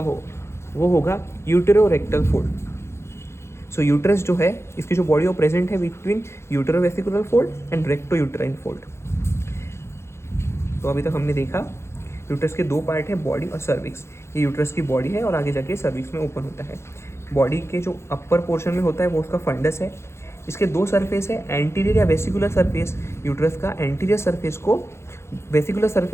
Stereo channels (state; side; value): late; right; 0.13 ms